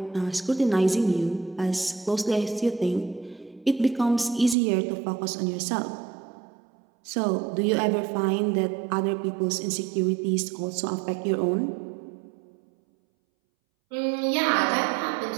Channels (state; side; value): drops out; left; at 4.5 s